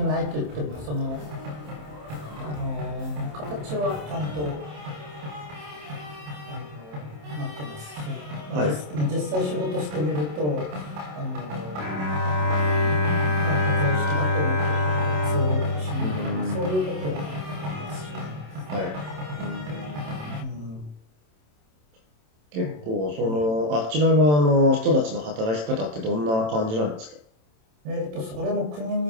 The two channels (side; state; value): left; late; 27 ms